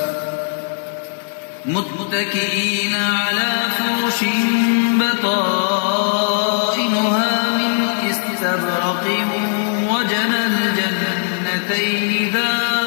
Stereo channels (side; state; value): right; silent; 60 dB below the other